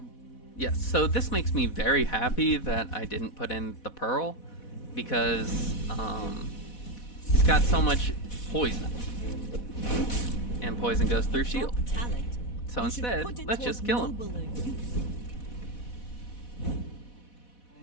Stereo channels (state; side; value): late; right; 4.1 ms